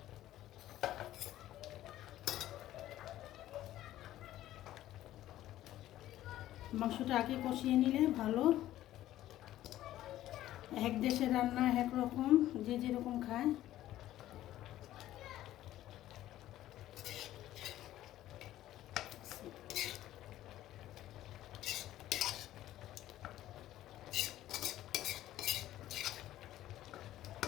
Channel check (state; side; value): quieter; right; 13.9 dB